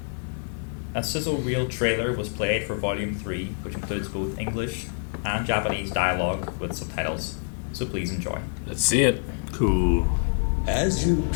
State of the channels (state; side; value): silent; right; digital silence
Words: A sizzle reel trailer was played for Volume 3, which includes both English and Japanese dialogue with subtitles. So please enjoy. Let's see it. Cool. As you